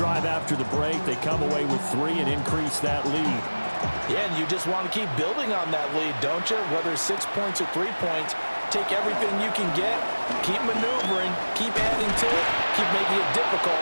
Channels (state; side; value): inverted; both; correlation -1.00